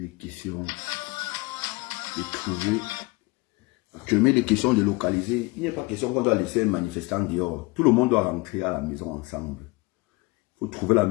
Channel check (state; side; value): quieter; right; 24.6 dB